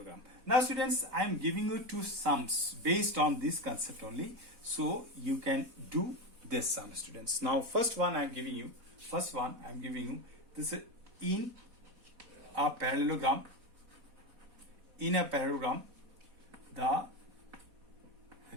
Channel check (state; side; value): late; left; 4.1 ms